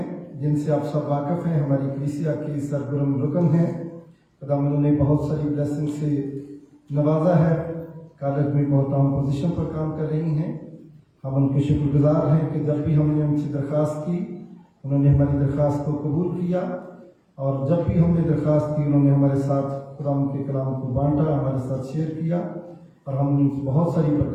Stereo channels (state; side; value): identical; both; correlation 1.00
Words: जिनसे आप सब वाकिफ हैं। हमारी कलीसिया की सरगर्म रुकन हैं। खुदावंद ने बहुत सारी ब्लेसिंग से नवाजा है। कॉलेज में बहुत अहम पोजीशन पर काम कर रही हैं। हम उनके शुक्रगुजार हैं कि जब भी हमने उनसे दरख्वास्त की उन्होंने हमारी दरख्वास्त को कबूल किया और जब भी हमने दरख्वास्त की उन्होंने हमारे साथ खुदावंद के कलाम को बांटा, हमारे साथ शेयर किया और हमने बहुत सारी